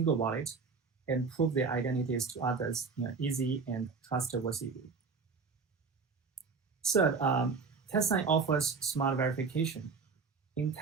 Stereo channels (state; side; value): quieter; left; 4.9 dB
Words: wallet and prove their identities to others in an easy and trustworthy way. Third, TestSign offers smart verification. In